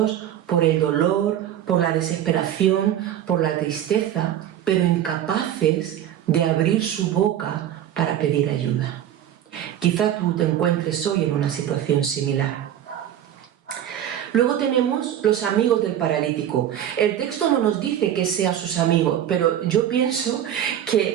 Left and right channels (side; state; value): left; quieter; 10.9 dB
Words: por el dolor, por la desesperación, por la tristeza, pero incapaces de abrir su boca para pedir ayuda. Quizá tú te encuentres hoy en una situación similar. Luego tenemos los amigos del paralítico. El texto no nos dice que sean sus amigos, pero yo pienso